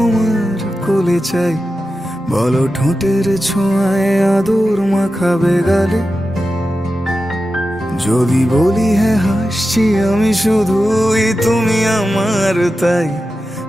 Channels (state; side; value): normal; both; correlation 0.92